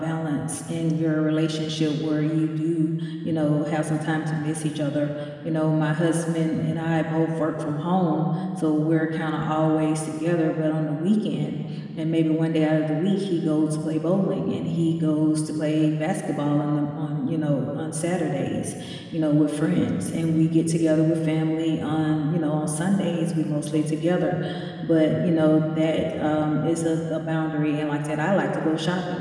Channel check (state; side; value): identical; both; correlation 1.00